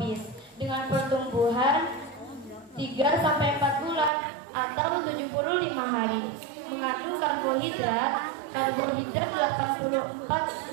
dengan pertumbuhan 3 sampai 4 bulan atau 75 hari. Mengandung karbohidrat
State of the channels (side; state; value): left; drops out; at 4.1 s